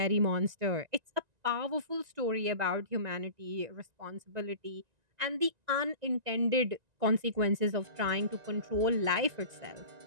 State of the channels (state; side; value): late; left; 1.9 ms